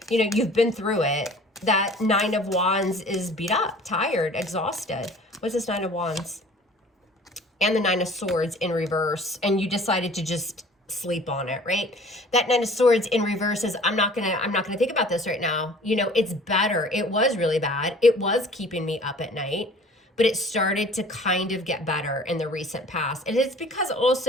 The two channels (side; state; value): both; normal; correlation 0.49